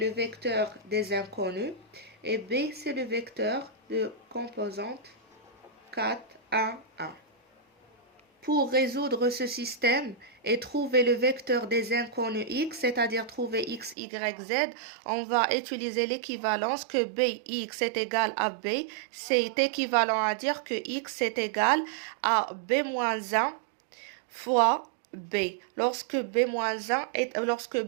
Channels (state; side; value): drops out; left; at 14.0 s